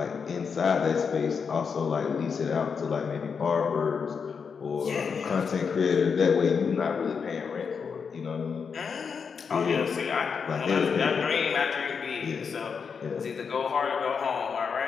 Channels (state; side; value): quieter; right; 6.0 dB